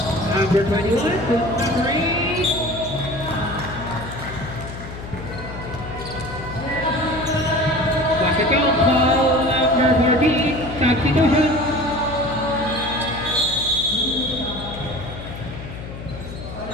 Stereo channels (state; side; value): noise; left; hum, 11 dB below the sound